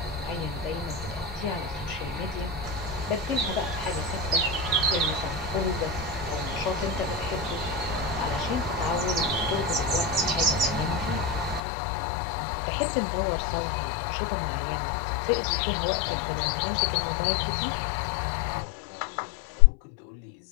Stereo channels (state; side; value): drops out; right; at 11.6 s